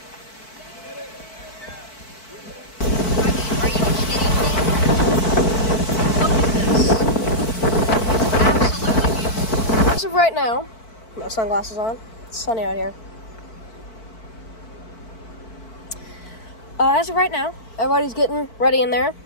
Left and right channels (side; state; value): right; late; 4.5 ms